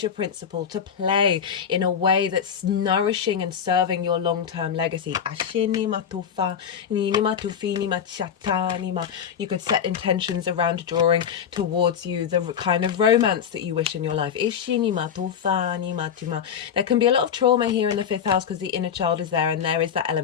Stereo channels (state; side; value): quieter; right; 7.9 dB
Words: principle, to play in a way that's nourishing and serving your long-term legacy. You could set intentions around drawing towards you the kind of romance that you wish in your life. There can be a lot of trauma here in the fifth house because the inner child is there, and there is that